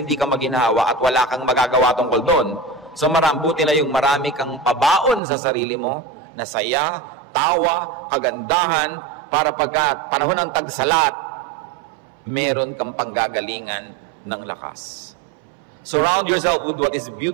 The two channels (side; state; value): left; drops out; at 5.2 s